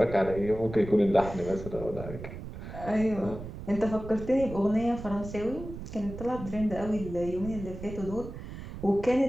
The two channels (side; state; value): right; noise; rumble, 10 dB below the sound